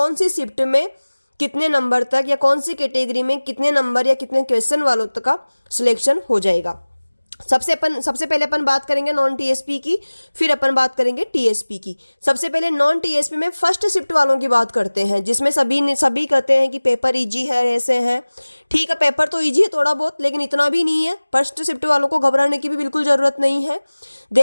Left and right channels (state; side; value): inverted; both; correlation -1.00